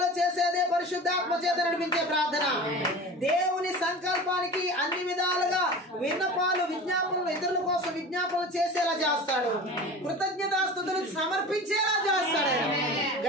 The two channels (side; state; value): both; normal; correlation 0.35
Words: చేసేదే పరిశుద్ధాత్మ చేత నడిపించే ప్రార్థన. దేవుని సంకల్పానికి అన్ని విధాలుగా విన్నపాలు, విజ్ఞాపనలు, ఇతరుల కోసం విజ్ఞాపనలు చేసేలా చేస్తాడు. కృతజ్ఞతాస్తుతులు సమర్పించేలా చేస్తాడు.